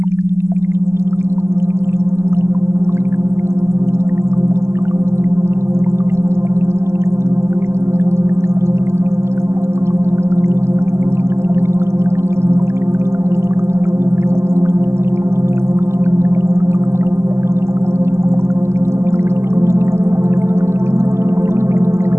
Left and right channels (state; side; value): late; left; 0.13 ms